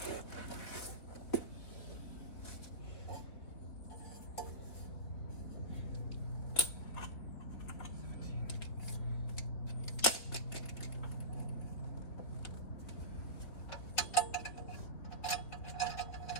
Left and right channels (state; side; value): late; right; 3.8 ms